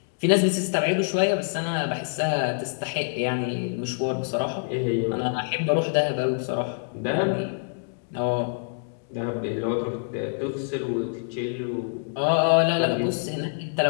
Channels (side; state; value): right; silent; digital silence